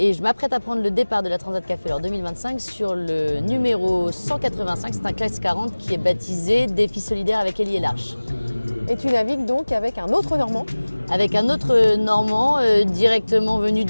je m'apprête à prendre le départ de la Transat Café L'Or 2025 sur le numéro 185, c'est un classe 40 qui est baptisé Défi solidaire avec Élie et l'Arche. Et tu navigues donc avec un autre Normand? Avec un autre Normand directement venu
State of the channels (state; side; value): inverted; both; correlation -1.00